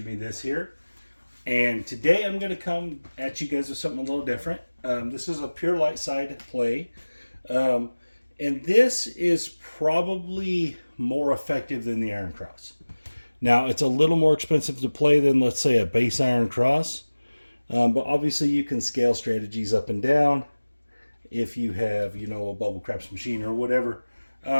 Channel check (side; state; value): both; inverted; correlation -1.00